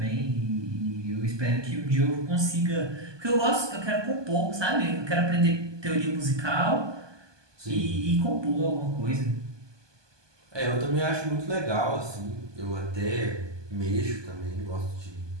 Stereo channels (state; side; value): late; left; 1.2 ms